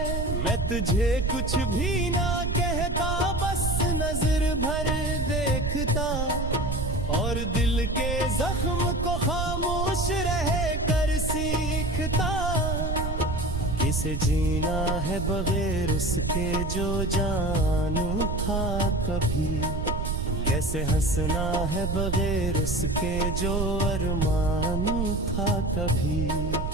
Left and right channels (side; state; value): right; noise; rumble, 2 dB below the sound